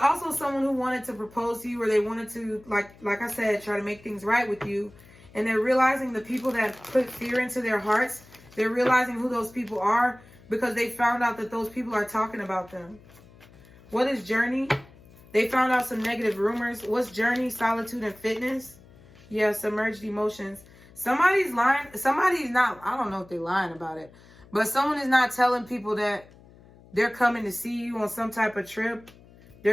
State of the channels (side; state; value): left; noise; hum, 24 dB below the sound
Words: someone who wanted to propose to you, or they wanted to, like I said, try to make things right with you. And they're realizing the people that put fear into their hearts, they're realizing who those people are because they found out that those people are talking about them. What is journey? They found out some negative rumors. What's journey? Solitude and fitness. Yeah, submerged emotions. Somebody's lying. Somebody's not, I don't know if they're lying about it, but someone is not telling people that they're coming to see you on some type of trip.